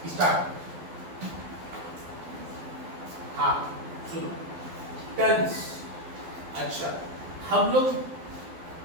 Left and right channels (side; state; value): left; late; 12 ms